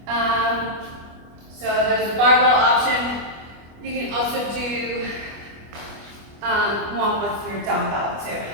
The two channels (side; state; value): left; late; 25 ms